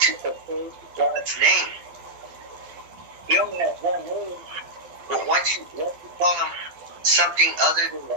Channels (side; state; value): left; late; 12 ms